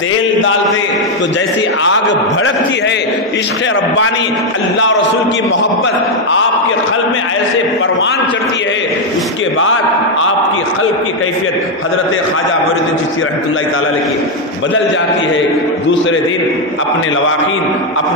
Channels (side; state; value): both; normal; correlation 0.03